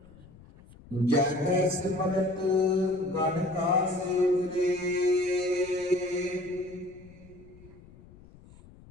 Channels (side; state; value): left; noise; rumble, 22 dB below the sound